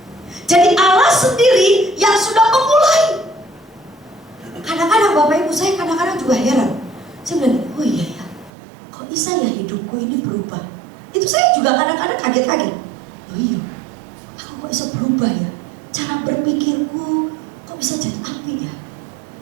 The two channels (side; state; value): left; drops out; at 8.5 s